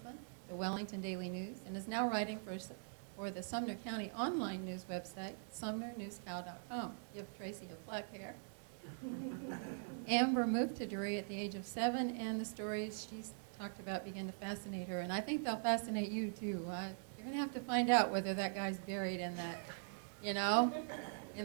the Wellington Daily News, and is now writing for the Sumner County online news website, sumnernewscow.com. Give Tracy your black hair. Amber moved to Drury at the age of 7, and the stories she's talked about begin to fascinate her, and I think they'll fascinate you too. You're going to have to find out whether that guy's buried in that,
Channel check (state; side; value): silent; left; digital silence